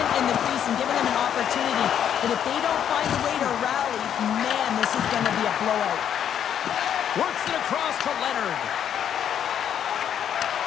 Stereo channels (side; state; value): right; quieter; 9.3 dB